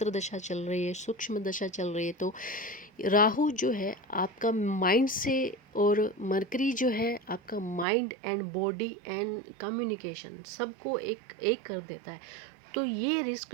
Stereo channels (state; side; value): drops out; left; at 7.9 s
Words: दशा चल रही है, सूक्ष्म दशा चल रही है, तो राहु जो है आपका माइंड से, और मरकरी जो है आपका mind and body and communication सबको एक एक कर देता है। तो ये रिस्क